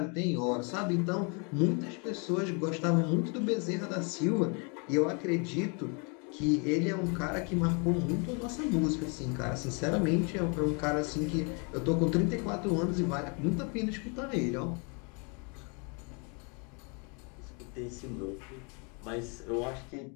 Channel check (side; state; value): right; quieter; 34.6 dB